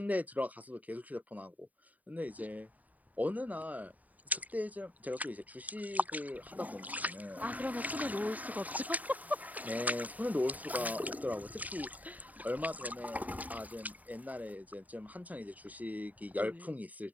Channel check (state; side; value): late; left; 0.075 ms